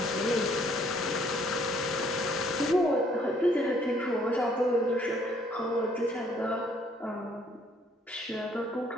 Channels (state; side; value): normal; both; correlation 0.64